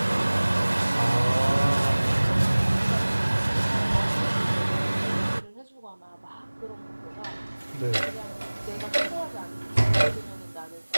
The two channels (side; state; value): both; inverted; correlation -1.00